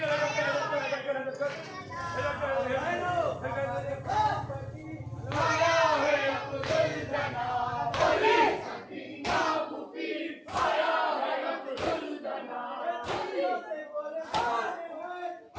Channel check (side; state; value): both; identical; correlation 1.00